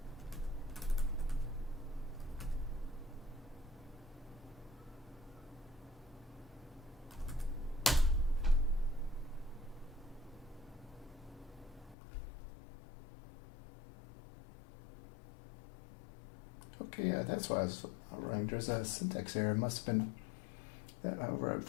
Okay, yeah, that's why I was running. There's a syntax error. It must have been that. However,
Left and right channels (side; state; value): right; drops out; at 12.0 s